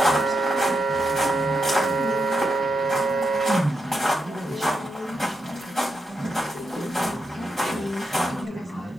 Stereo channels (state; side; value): normal; both; correlation 0.85